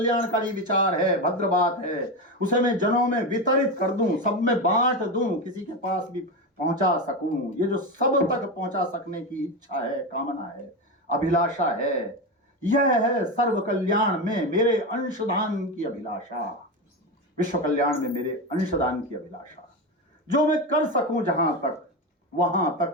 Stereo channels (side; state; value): both; normal; correlation 0.17